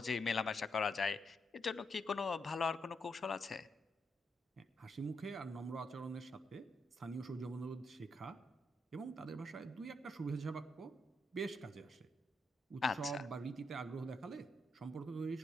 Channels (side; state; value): both; normal; correlation 0.80